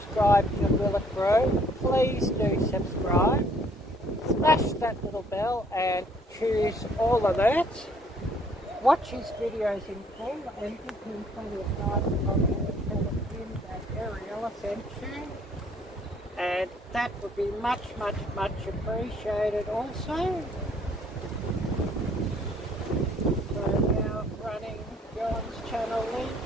to Willett Bro, please do subscribe. Smash that little bell and choose all alerts. Watch his videos in full and give him plenty of nice comments and tell him that Arielle sent you. And that would be much appreciated also. So now running John's channel link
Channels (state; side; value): normal; both; correlation 0.62